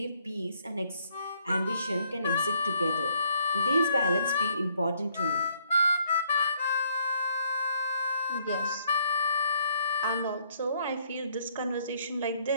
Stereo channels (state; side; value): inverted; both; correlation -0.68